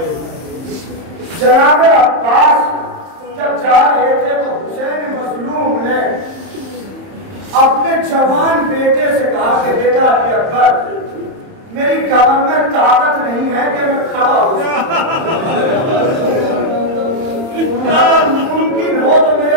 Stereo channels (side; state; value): left; late; 31 ms